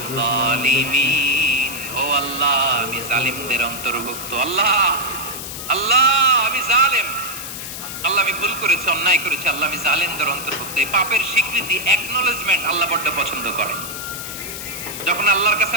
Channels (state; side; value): noise; left; hiss, 8 dB below the sound